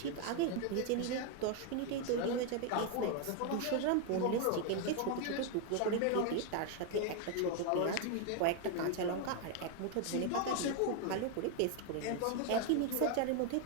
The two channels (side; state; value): both; different; correlation 0.01